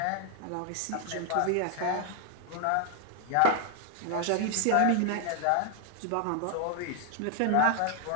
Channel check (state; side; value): different; both; correlation 0.01